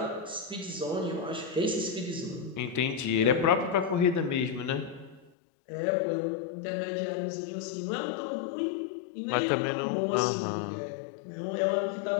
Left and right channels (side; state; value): right; drops out; at 5.3 s